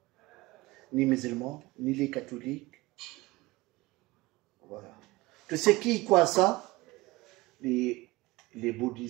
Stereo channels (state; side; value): quieter; left; 20.8 dB